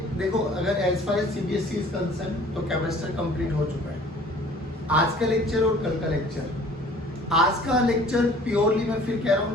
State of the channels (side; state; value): both; normal; correlation 0.51